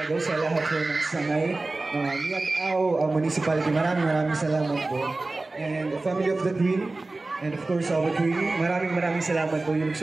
sa lahat po ng sangay. Miagaw Municipality, maraming salamat po. And the family of the Queen, and of course our Queen, maraming salamat po. You look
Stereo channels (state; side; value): quieter; left; 3.2 dB